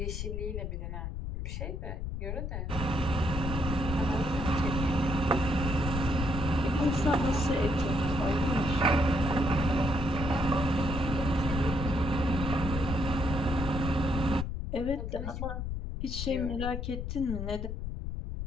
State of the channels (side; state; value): left; noise; rumble, 4 dB below the sound